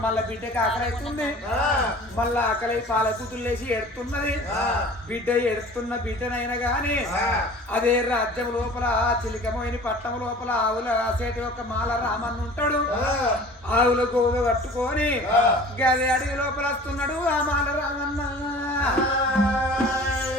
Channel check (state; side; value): normal; both; correlation 0.44